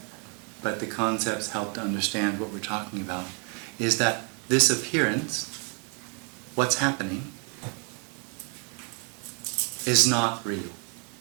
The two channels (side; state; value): left; quieter; 37.1 dB